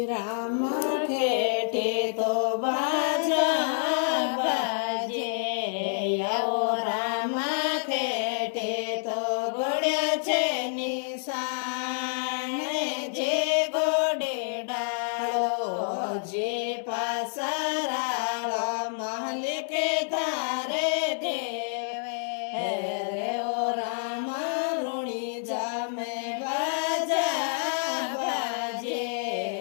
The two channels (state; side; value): silent; right; digital silence